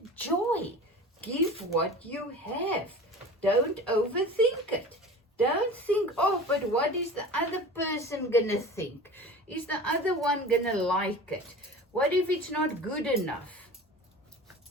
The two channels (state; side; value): normal; both; correlation 0.37